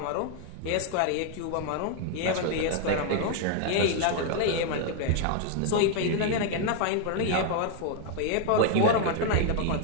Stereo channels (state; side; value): different; both; correlation 0.00